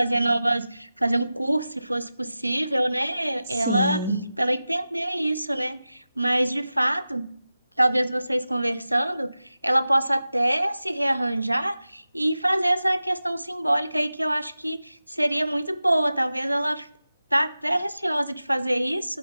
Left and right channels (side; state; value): both; inverted; correlation -0.94